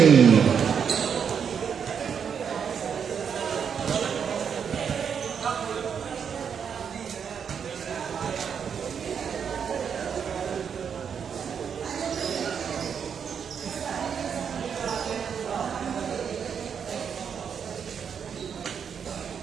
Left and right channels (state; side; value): quieter; left; 7.2 dB